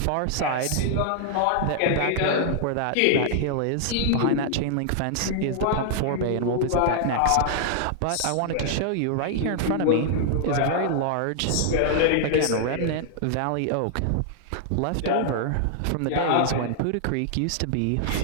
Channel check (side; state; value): both; different; correlation -0.01